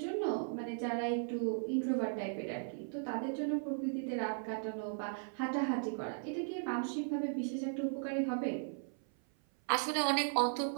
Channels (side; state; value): left; silent; 53 dB below the other